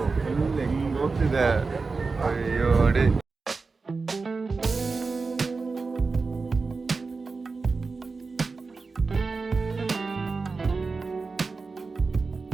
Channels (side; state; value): left; quieter; 4.2 dB